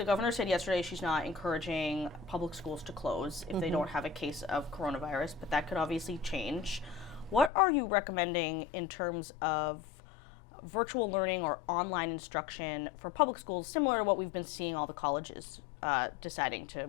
governor said yesterday she's not encouraging public schools to close if they don't have a case of coronavirus, but that could obviously change. What are you recommending in terms of virtual learning or online instruction for public schools, similar to what we've been seeing all the colleges deciding to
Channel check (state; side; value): drops out; right; at 7.5 s